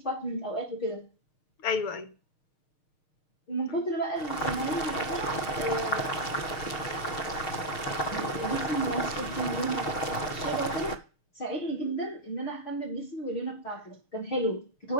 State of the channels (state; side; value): late; right; 6.5 ms